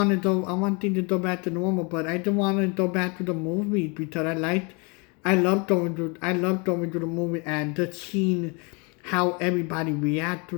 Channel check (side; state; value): right; quieter; 31.1 dB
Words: to go. I want things to go back to normal, but I don't want to go back to the movies because I love going to the movie and just seeing how everybody react to